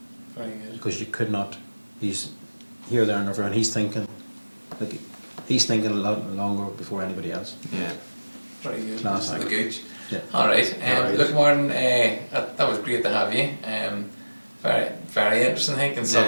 Very good. Because you could not. He's here, there, and everywhere, and he's thinking a lot longer before anybody else. Yeah. Very good. Class. The Gooch. Yeah. All right. Look, Martin, that was great to have you. Very, very interesting. I think, and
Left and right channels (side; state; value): both; inverted; correlation -1.00